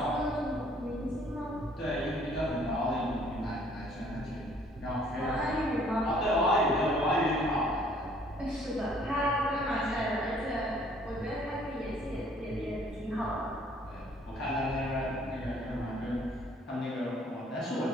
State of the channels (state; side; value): normal; both; correlation 0.60